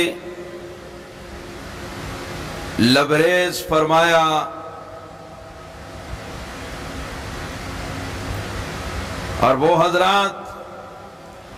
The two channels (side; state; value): both; identical; correlation 1.00